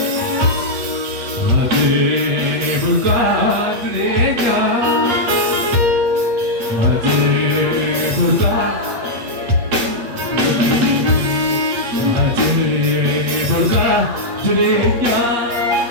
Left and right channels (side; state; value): left; late; 8.5 ms